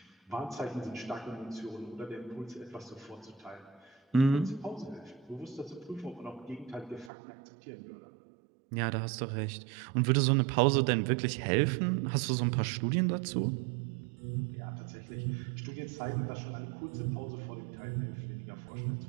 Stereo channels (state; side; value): drops out; left; at 7.1 s